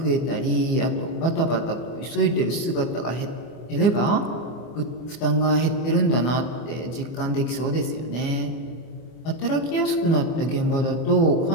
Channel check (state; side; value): late; right; 24 ms